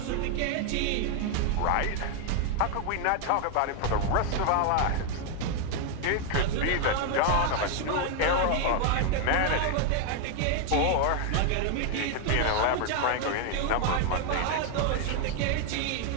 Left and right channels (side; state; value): both; different; correlation 0.00